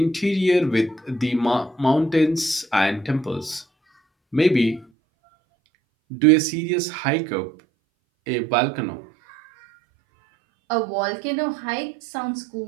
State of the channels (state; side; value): drops out; left; at 4.9 s